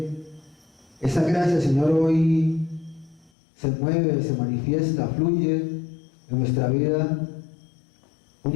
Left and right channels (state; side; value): drops out; right; at 3.3 s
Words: esa gracia, Señor, hoy se mueve, se manifiesta, fluye en nuestra vida